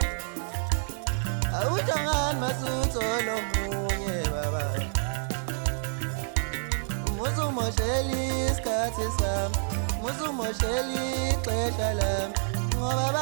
awuhlangani masutho lomunye baba. Musumosheli isikhathi sami, musumosheli ixesha lami, ngoba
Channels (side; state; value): left; silent; 59 dB below the other